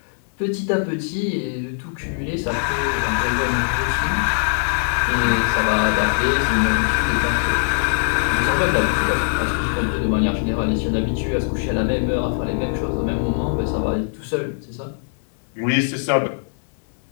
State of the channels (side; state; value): right; silent; digital silence